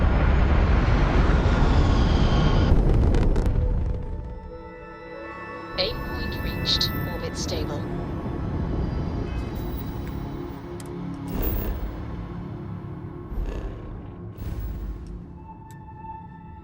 Aim point reached. Orbit stable.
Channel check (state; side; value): identical; both; correlation 1.00